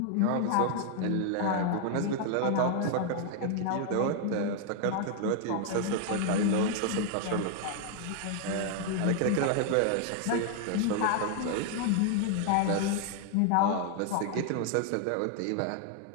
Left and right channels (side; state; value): both; different; correlation 0.00